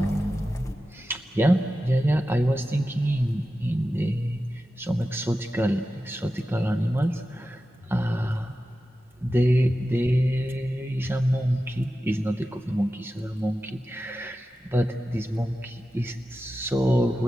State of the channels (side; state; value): both; normal; correlation 0.93